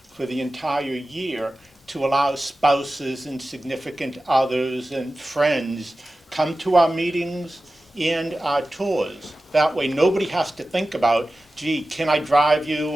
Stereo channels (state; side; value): normal; both; correlation 0.95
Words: for the entire year to allow spouses and significant others and friends come to our meetings and our tours. That way nobody has to think about, gee, can I drive you